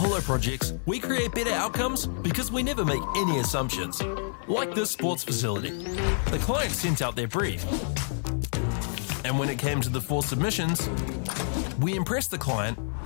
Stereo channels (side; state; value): right; silent; 59 dB below the other